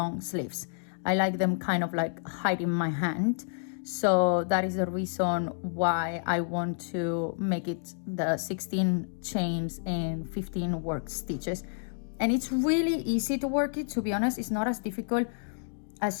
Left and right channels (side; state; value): right; silent; digital silence